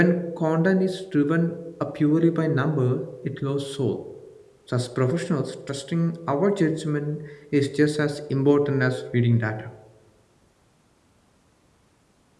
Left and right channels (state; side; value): identical; both; correlation 1.00